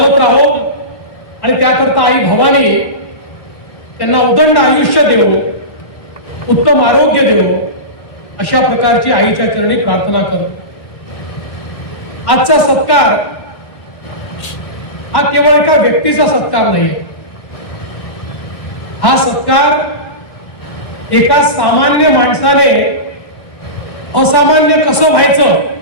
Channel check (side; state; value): right; late; 1.1 ms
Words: राहो आणि त्याकरता आई भवानी त्यांना उदंड आयुष्य देव, उत्तम आरोग्य देव, अशा प्रकारची आईच्या चरणी प्रार्थना करतो। आजचा सत्कार हा केवळ एका व्यक्तीचा सत्कार नाही, हा सत्कार एका सामान्य माणसाने असामान्य कसं व्हायचं